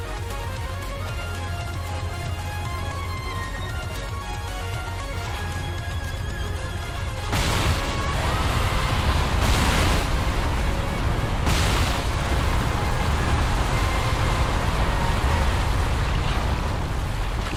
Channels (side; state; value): both; identical; correlation 1.00